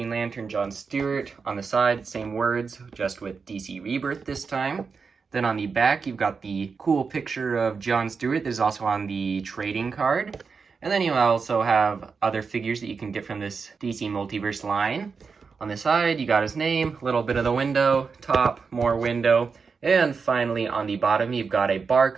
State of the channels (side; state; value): left; quieter; 5.2 dB